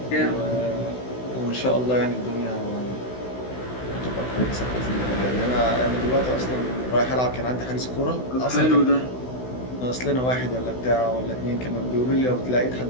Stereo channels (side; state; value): right; late; 16 ms